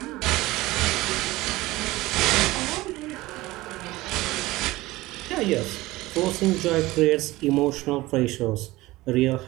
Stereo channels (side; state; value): left; quieter; 18.9 dB